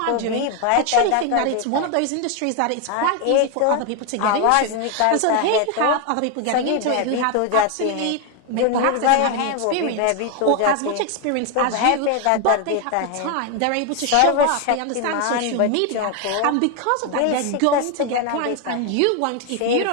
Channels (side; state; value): both; different; correlation 0.01